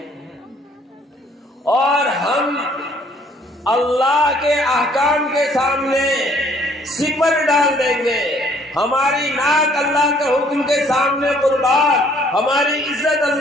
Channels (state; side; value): normal; both; correlation 0.61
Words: اور ہم اللہ کے احکام کے سامنے سپر ڈال دیں گے، ہماری ناک اللہ کے حکم کے سامنے قربان، ہماری عزت